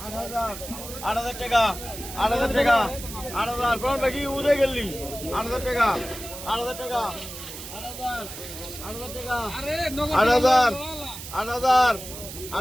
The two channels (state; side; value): noise; right; hiss, 11 dB below the sound